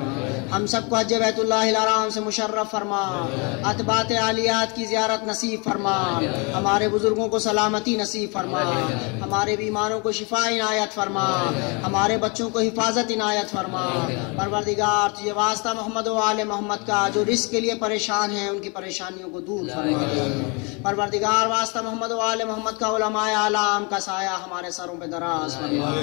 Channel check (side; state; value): right; quieter; 31.3 dB